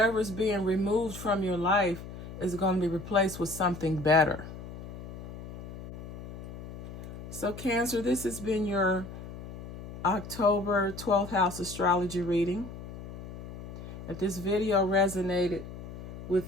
is being removed from your life is going to be replaced with something better. So Cancer, this has been your October 12th house astrology reading. If this video resonated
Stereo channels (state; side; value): noise; left; hum, 11 dB below the sound